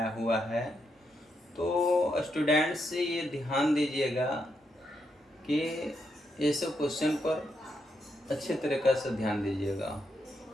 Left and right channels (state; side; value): normal; both; correlation 0.81